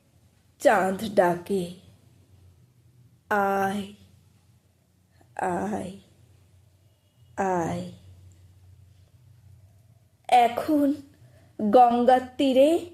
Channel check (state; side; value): identical; both; correlation 1.00